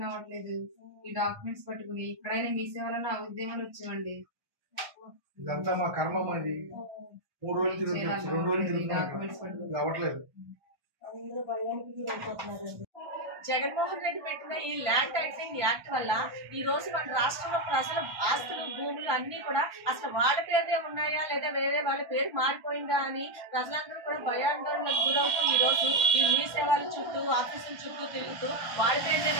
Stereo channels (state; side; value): late; left; 1.2 ms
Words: అవ్వట్లేదు. ఈ డాక్యుమెంట్స్ పట్టుకుని ఇక్కడైనా మీ సేవలను ఉద్యమాలు వచ్చామండి. ఇదంతా మా కర్మ. అది 3 రోజులు తిరుగుతున్నాం, 2 రోజులు తిరుగుతున్నాం, అవ్వట్లేదు. జగన్మోహన్ రెడ్డి పెట్టిన ఈ ల్యాండ్ టైటిలింగ్ యాక్ట్ వల్ల ఈ రోజు మన రాష్ట్రంలో ప్రజల ఆస్తులు భూములు అన్ని కూడా అసలు వాళ్ళ పేరునే ఉన్నాయా లేదా వేరే వాళ్ళ పేరు మారిపోయిందా అని ప్రజలందరూ కూడా భయాందోళనకు గురవుతూ ఈ రోజు ఈ మీ సేవల చుట్టూ ఆఫీసుల చుట్టూ తిరుగుతూ వాళ్ళ పేరునే